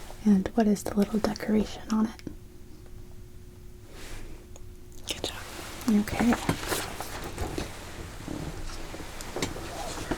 And what is the little decoration on it? Good job. Okay.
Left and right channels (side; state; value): both; identical; correlation 1.00